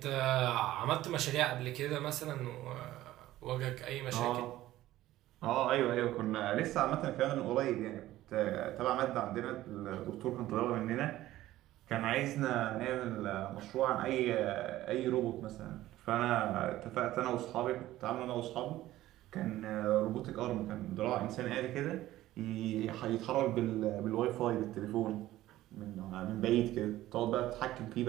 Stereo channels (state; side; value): quieter; left; 15.2 dB